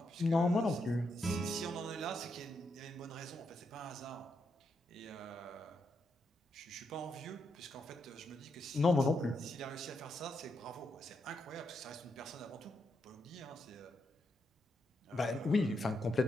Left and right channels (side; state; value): both; normal; correlation 0.81